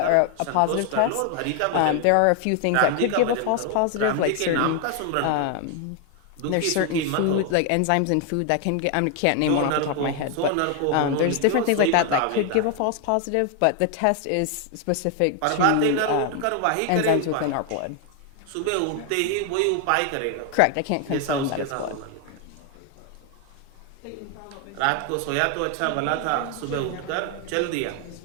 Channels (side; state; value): both; different; correlation 0.01